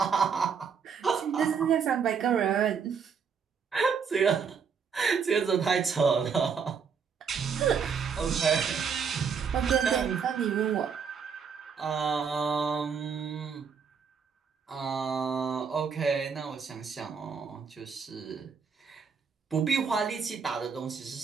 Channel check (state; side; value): quieter; left; 6.3 dB